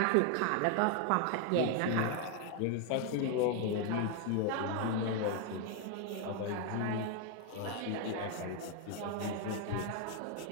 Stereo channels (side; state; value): both; different; correlation 0.01